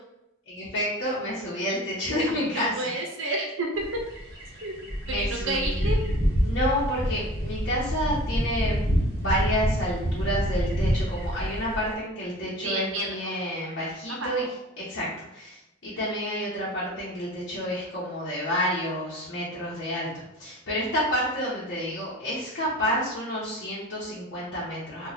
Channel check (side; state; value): both; normal; correlation 0.40